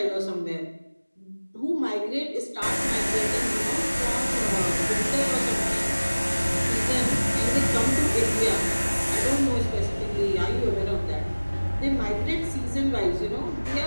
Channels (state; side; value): inverted; both; correlation -1.00